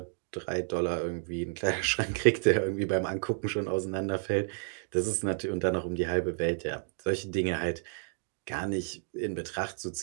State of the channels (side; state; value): left; silent; digital silence